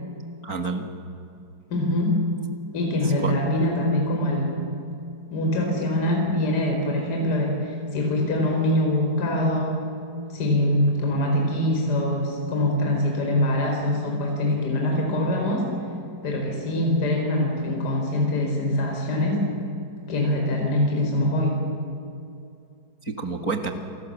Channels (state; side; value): late; right; 4.4 ms